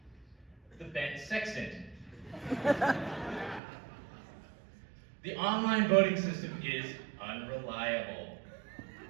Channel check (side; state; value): left; drops out; at 3.6 s